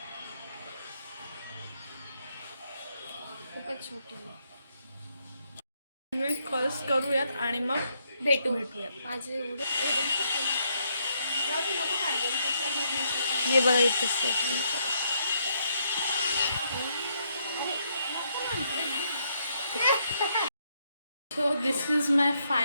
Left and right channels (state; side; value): inverted; both; correlation -0.76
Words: खूपच छोटी आहे. कॉल्स करूयात आणि मग भेटूयात. माझे एवढे हे बघा इथं so this is my